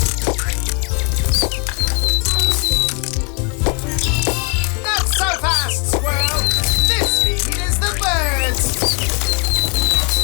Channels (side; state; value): right; quieter; 35.5 dB